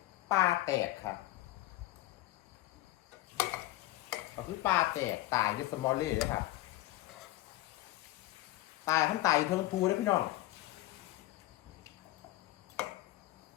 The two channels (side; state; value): right; quieter; 16.8 dB